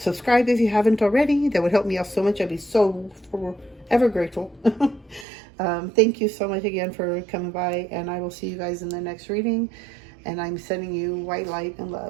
if you haven't already. That would help me out so much. I'd be so forever grateful. Thank you so much again for coming by, and I will see you guys in the next reading. And I'm sending you white light and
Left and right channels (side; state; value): left; drops out; at 5.2 s